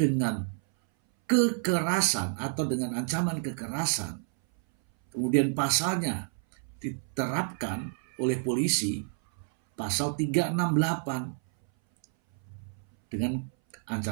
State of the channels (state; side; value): silent; left; 59 dB below the other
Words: dengan kekerasan atau dengan ancaman kekerasan, kemudian pasalnya diterapkan oleh polisi, pasal 368 dengan